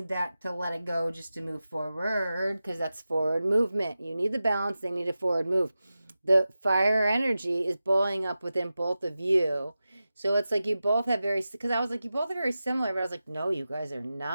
that to let it go, just to move forward, because that's forward movement. You need the balance, they need a forward move. The fire energy is boiling up within both of you. So it's like you both have because I was like, you both are very similar, but I was like, no, you guys are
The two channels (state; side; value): inverted; both; correlation -0.93